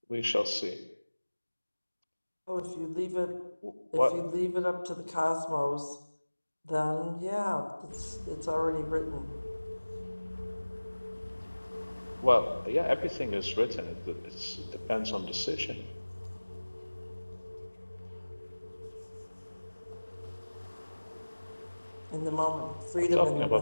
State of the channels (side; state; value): both; inverted; correlation -1.00